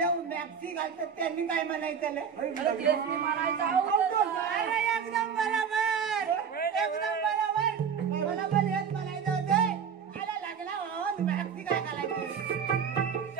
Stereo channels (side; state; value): left; quieter; 7.1 dB